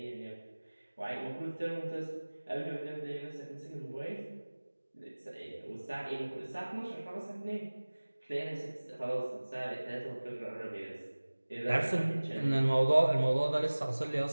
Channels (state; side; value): inverted; both; correlation -1.00